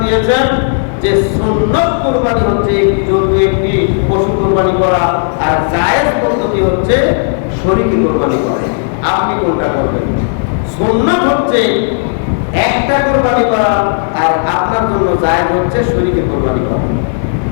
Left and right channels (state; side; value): silent; right; digital silence